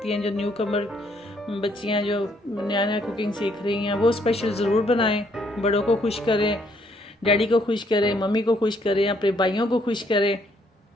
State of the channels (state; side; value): normal; both; correlation 0.69